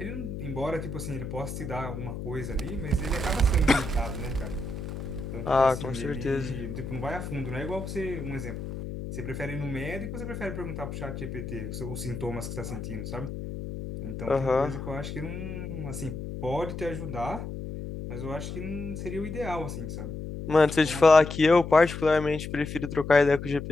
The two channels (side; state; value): left; noise; hum, 7 dB below the sound